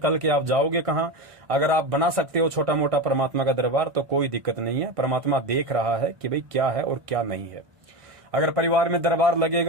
के आप जाओगे कहां। अगर आप बना सकते हो छोटा मोटा परमात्मा का दरबार तो कोई दिक्कत नहीं है। परमात्मा देख रहा है कि भाई क्या है और क्या नहीं है। अगर परिवार में दरबार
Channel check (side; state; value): left; late; 1.5 ms